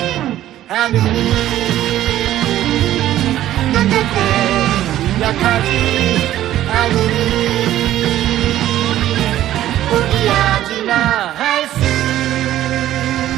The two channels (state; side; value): quieter; left; 13.2 dB